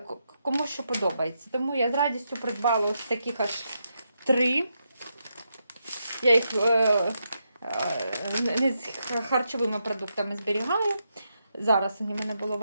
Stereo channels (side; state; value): both; inverted; correlation -0.83